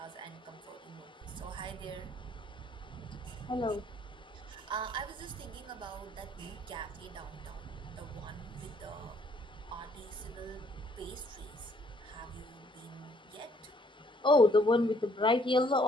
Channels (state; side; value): normal; both; correlation 0.64